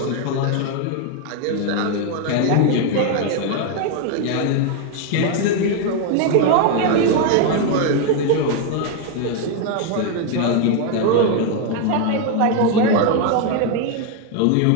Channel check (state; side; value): different; both; correlation 0.01